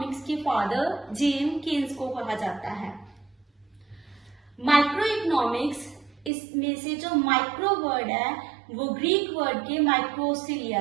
के फादर जेम केन्स को कहा जाता है। माइक्रो इकोनॉमिक्स, इसमें से जो माइक्रो वर्ड है वो ग्रीक वर्ड के माइक्रो से लिया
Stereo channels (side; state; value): left; drops out; at 6.3 s